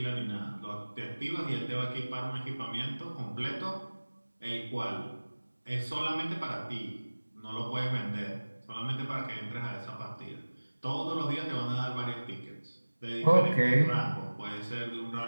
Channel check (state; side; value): inverted; both; correlation -1.00